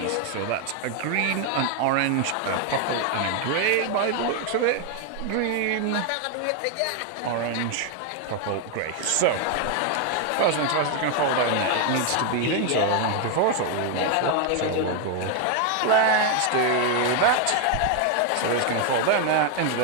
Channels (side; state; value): both; different; correlation 0.01